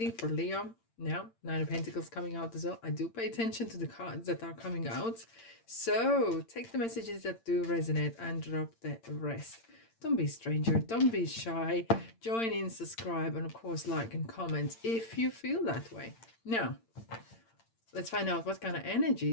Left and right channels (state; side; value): late; right; 8.8 ms